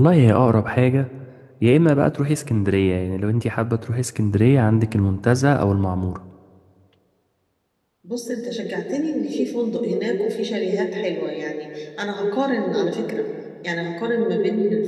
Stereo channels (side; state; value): both; identical; correlation 1.00